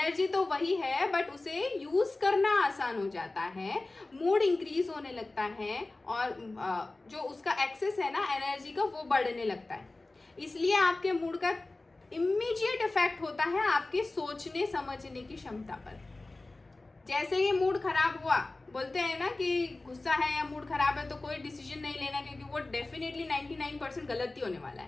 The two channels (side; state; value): right; quieter; 3.1 dB